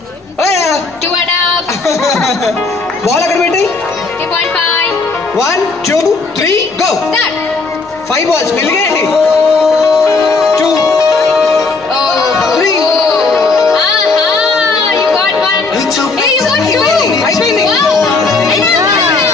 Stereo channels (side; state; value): right; quieter; 3.9 dB